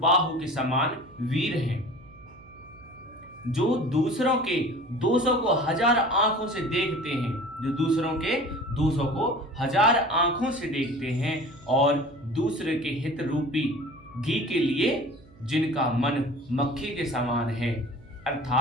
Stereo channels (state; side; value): noise; right; hum, 25 dB below the sound